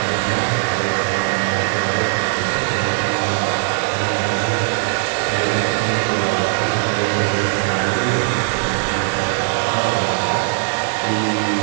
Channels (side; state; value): left; silent; 64 dB below the other